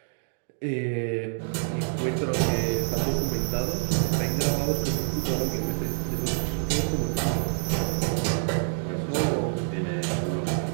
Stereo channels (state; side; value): silent; left; digital silence